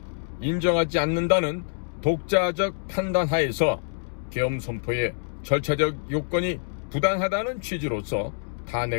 인정하지 않는다는 독자적 판단하에서 계엄 선포의 절차적 요건이 부당하다는 취지로서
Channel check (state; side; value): silent; right; digital silence